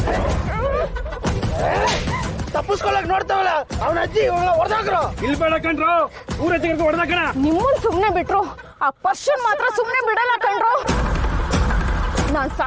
ತಪ್ಪಿಸ್ಕೊಳಕ್ ನೋಡ್ತಾವಲ್ಲ ಅವನ ಅಜ್ಜಿ ಹೊಡೆದಾಕ್ರು. ಇಲ್ಲಿ ಬೇಡ ಕಣ್ರು, ಊರ ಹೊಡೆದಾಕಣ. ನಿಮ್ಮನ್ ಸುಮ್ನೆ ಬಿಟ್ರು, ಆ ಪರ್ಷನ್ ಮಾತ್ರ ಸುಮ್ನೆ ಬಿಡಲ್ಲ ಕಣ್ರು. ನಾನ್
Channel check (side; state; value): both; identical; correlation 1.00